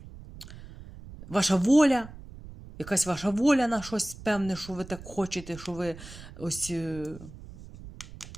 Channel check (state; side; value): noise; right; rumble, 16 dB below the sound